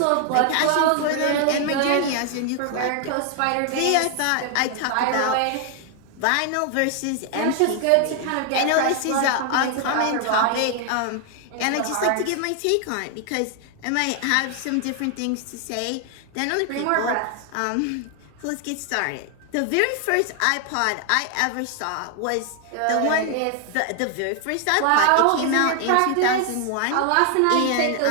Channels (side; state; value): both; different; correlation 0.00